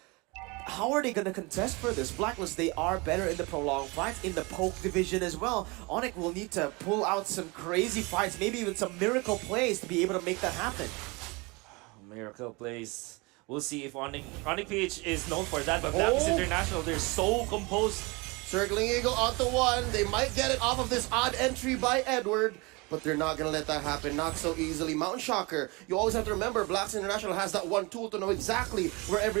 How are they going to contest for this? Blacklist, they are better in the prolonged fights, in the poke division as well. Onyx will need to pull out some crazy fights, maybe even some miracle plays to be able to make that happen. Miracle plays. We'll see if Onyx PH is known for that, but Blacklist International, they're so composed. Circling eagle onto 1. They might get it off of this odd entry by Edward, but they're not going to let that happen. Not so easily. Mountain Shocker. You always have to remember, Blacks International has that one tool to know exactly where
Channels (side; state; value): left; quieter; 26.6 dB